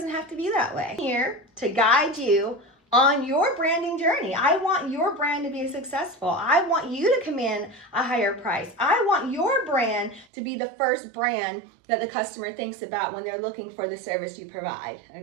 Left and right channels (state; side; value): drops out; left; at 10.2 s